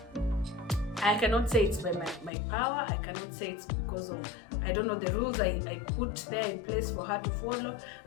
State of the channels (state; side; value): drops out; right; at 2.3 s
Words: I cannot say it's by my power. I cannot say it's because of, I don't know, the rules I put there in place for her to follow.